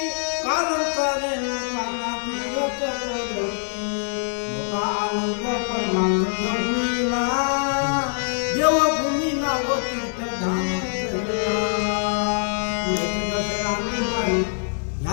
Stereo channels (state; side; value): silent; right; 57 dB below the other